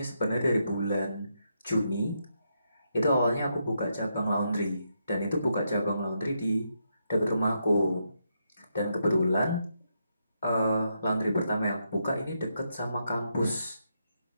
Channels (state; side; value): inverted; both; correlation -0.81